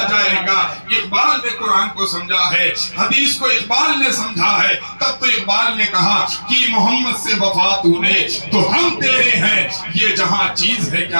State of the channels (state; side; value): inverted; both; correlation -1.00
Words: جائے گا. اقبال نے قرآن کو سمجھا ہے، حدیث کو اقبال نے سمجھا ہے. تب تو اقبال نے کہا کہ محمد سے وفا تو نے تو ہم تیرے ہیں، یہ جہاں چیز ہے